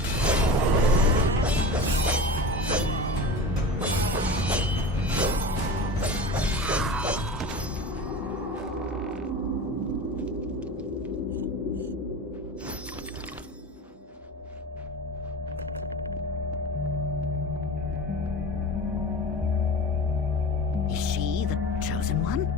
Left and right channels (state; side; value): normal; both; correlation 0.32